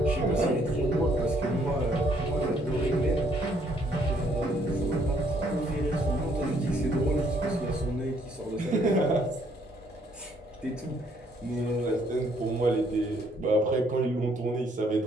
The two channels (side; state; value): both; normal; correlation 0.67